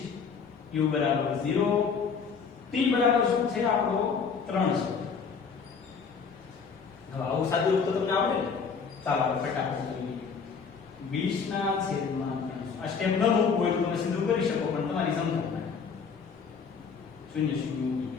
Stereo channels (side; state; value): right; quieter; 5.8 dB